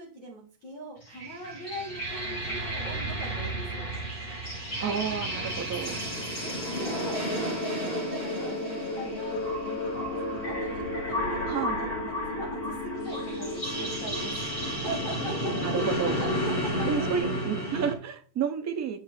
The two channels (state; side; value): late; right; 7.1 ms